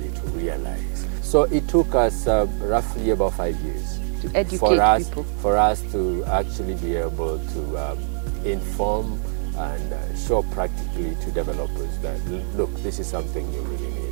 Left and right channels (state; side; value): silent; left; 55 dB below the other